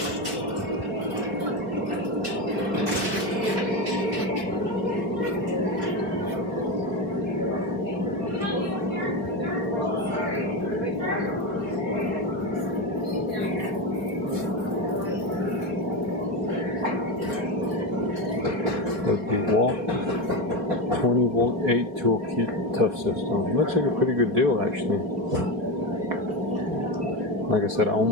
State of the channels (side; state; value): left; late; 4.8 ms